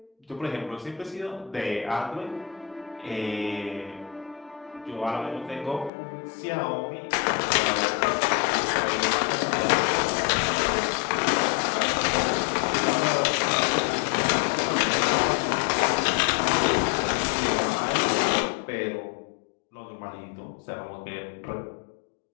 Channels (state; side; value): drops out; right; at 5.9 s